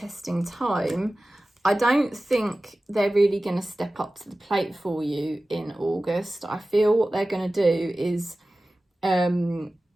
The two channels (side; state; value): both; normal; correlation 0.96